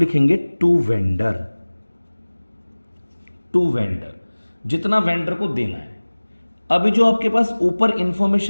टू वेंडर। टू वेंडर, जितना वेंडर को देना है। अभी जो आपके पास ऊपर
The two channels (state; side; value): inverted; both; correlation -1.00